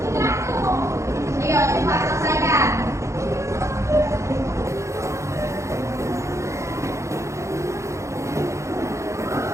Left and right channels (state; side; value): late; left; 0.14 ms